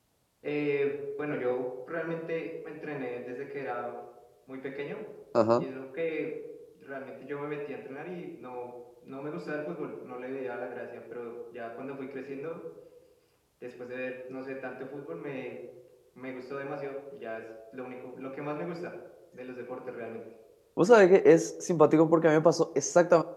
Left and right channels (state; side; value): identical; both; correlation 1.00